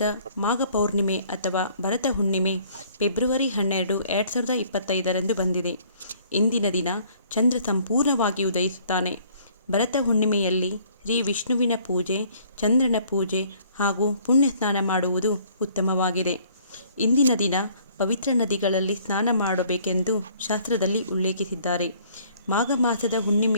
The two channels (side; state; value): both; inverted; correlation -0.59